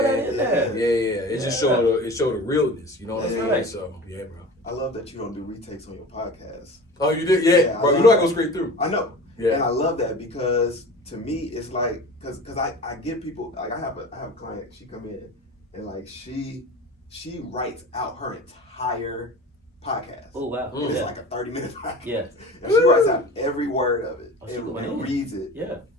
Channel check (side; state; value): both; normal; correlation 0.36